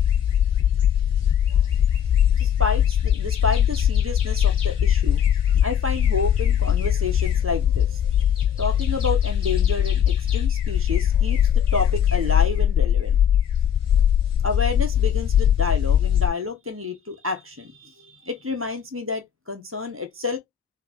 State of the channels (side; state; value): right; quieter; 8.6 dB